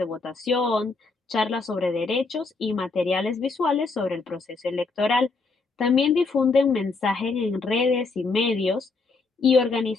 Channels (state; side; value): quieter; right; 4.0 dB